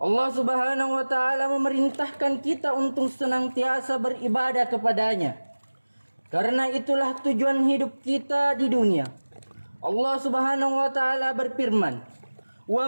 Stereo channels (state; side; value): inverted; both; correlation -1.00